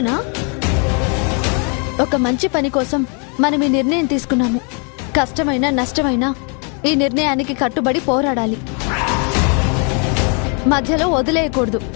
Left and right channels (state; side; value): quieter; right; 37.2 dB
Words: ఒక మంచి పని కోసం మనం ఈ నిర్ణయం తీసుకున్నాము. కష్టమైనా నష్టమైనా ఈ నిర్ణయానికి కట్టుబడి పోరాడాలి, మధ్యలో వదిలేయకూడదు.